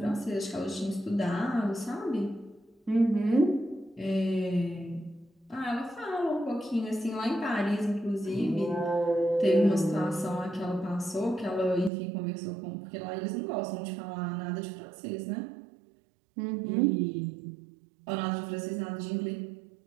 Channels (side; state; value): left; drops out; at 11.9 s